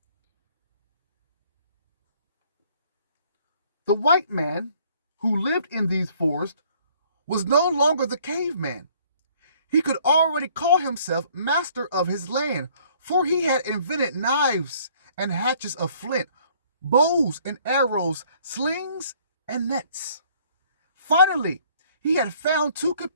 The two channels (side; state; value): both; inverted; correlation -0.60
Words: The white man who lived in these forests was no longer the caveman. He could already call himself master of his land, for he had invented knives and hatchets of flint, bows and arrows, slings and nets. Finally, he had found two